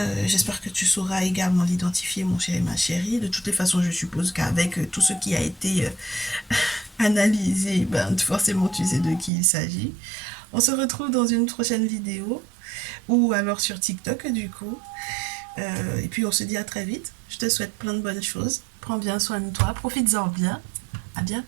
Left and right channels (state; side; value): drops out; left; at 9.3 s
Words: J'espère que tu sauras également l'identifier, mon chéri, ma chérie. De toutes les façons, je suppose qu'avec tout ce qui a été analysé, ben, forcément, tu sais de qui il s'agit. On se retrouve dans une prochaine vidéo ou alors sur TikTok, du coup. Et puis, on se dit à très vite. Je te souhaite plein de bonnes choses. Prends bien soin de toi. Profites-en bien. À